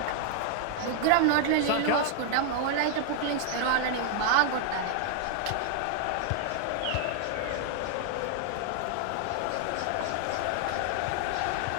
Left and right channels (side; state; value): both; different; correlation 0.00